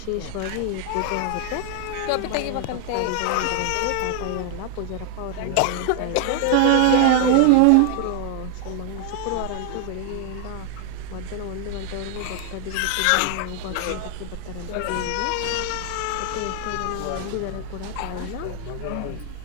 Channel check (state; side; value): different; both; correlation 0.00